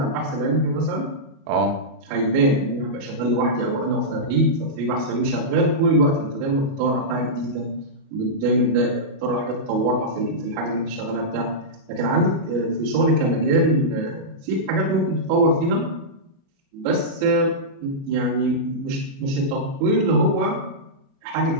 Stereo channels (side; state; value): left; late; 37 ms